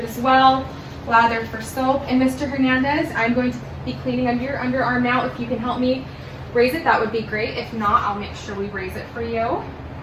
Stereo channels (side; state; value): both; identical; correlation 1.00